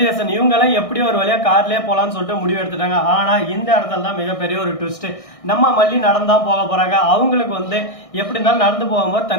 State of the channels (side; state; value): right; late; 1.6 ms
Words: இவங்கெல்லாம் எப்படி ஒரு வழியா கார்லயே போலான்னு சொல்லிட்டு முடிவு எடுத்துட்டாங்க. ஆனா இந்த இடத்துல தான் மிகப்பெரிய ஒரு ட்விஸ்ட். நம்ம மல்லி நடந்தான் போக போறாங்க. அவங்களுக்கு எப்படி இருந்தாலும் நடந்து போகும்போது